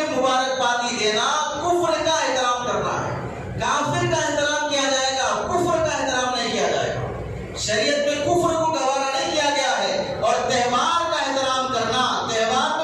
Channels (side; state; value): both; identical; correlation 1.00